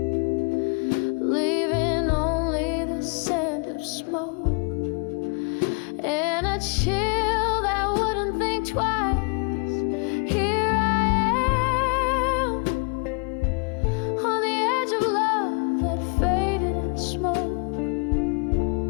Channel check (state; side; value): quieter; right; 35.5 dB